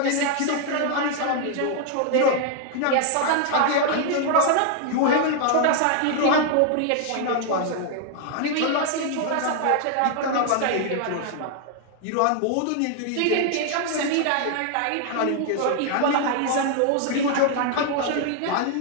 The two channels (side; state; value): both; different; correlation 0.00